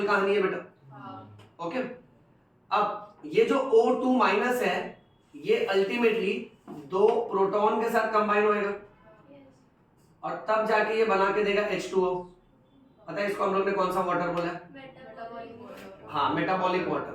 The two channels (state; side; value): identical; both; correlation 1.00